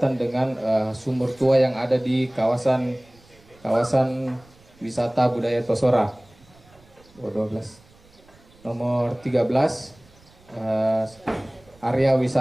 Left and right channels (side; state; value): right; noise; rumble, 28 dB below the sound